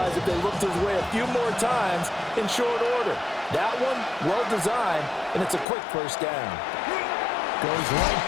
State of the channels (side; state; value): right; drops out; at 5.7 s